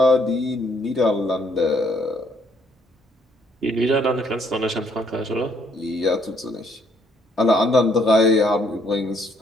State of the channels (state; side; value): normal; both; correlation 0.67